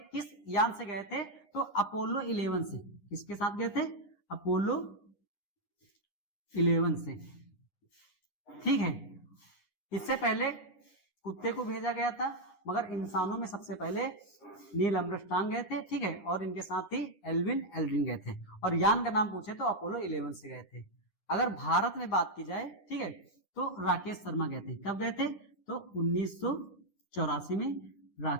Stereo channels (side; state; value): right; late; 9.9 ms